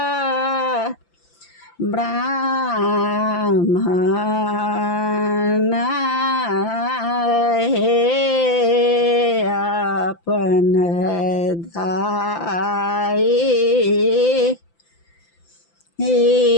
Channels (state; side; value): late; right; 5.9 ms